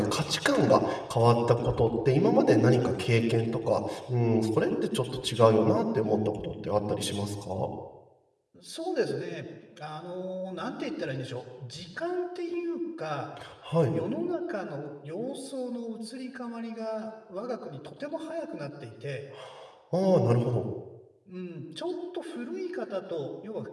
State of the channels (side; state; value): both; identical; correlation 1.00